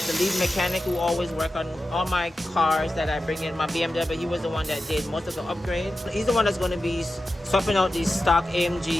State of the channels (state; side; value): normal; both; correlation 0.92